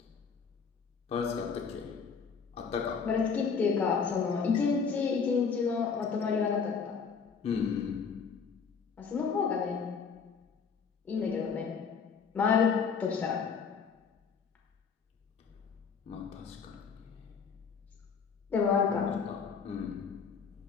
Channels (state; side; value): quieter; right; 5.9 dB